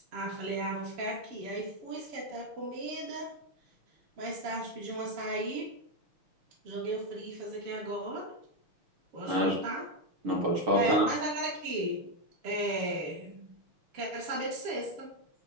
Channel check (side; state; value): left; late; 6.5 ms